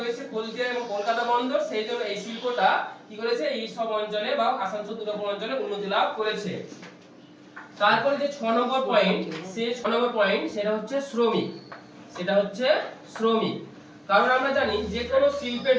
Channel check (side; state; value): both; identical; correlation 1.00